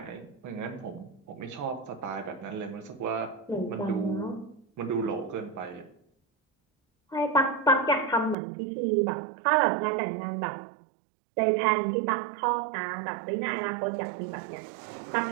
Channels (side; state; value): left; drops out; at 8.3 s